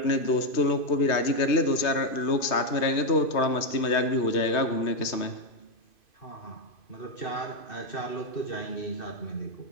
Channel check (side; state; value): right; late; 2.5 ms